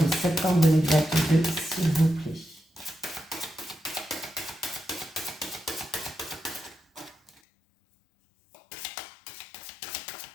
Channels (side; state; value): right; drops out; at 7.4 s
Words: septembre 2022, s'il vous plaît.